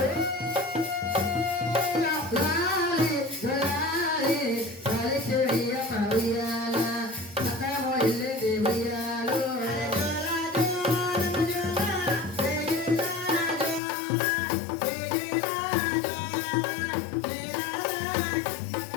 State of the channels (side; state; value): right; drops out; at 13.8 s